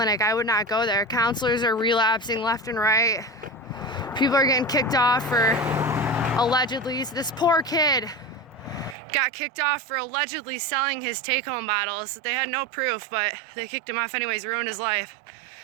I would not go there. Counselors are relapsing left and right. People are getting kicked off for allegedly, this poor kid got kicked off for allegedly selling his take-home bottles. They had no proof, but they kicked him off anyways, ruined his life.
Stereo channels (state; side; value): drops out; left; at 9.0 s